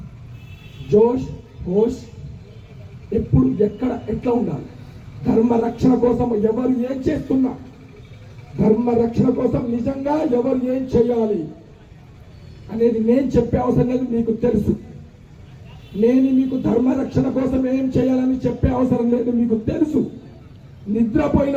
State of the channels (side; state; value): both; identical; correlation 1.00